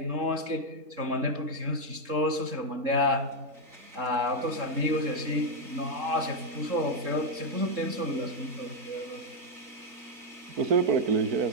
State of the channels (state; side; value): late; left; 3.7 ms